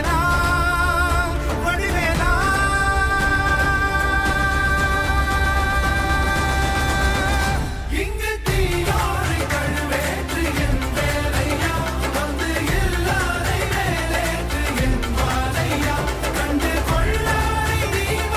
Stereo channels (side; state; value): both; identical; correlation 1.00